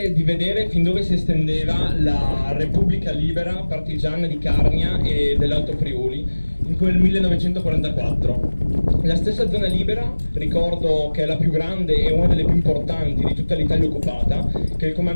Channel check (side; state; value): both; inverted; correlation -1.00